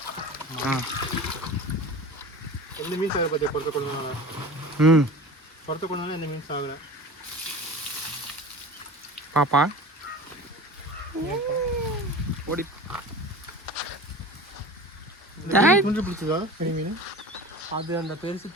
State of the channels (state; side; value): normal; both; correlation 0.36